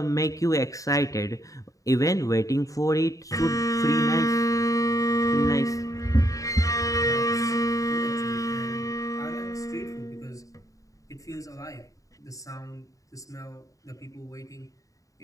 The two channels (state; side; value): late; right; 0.16 ms